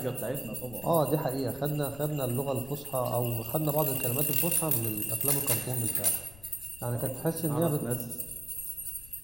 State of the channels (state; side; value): noise; left; rumble, 18 dB below the sound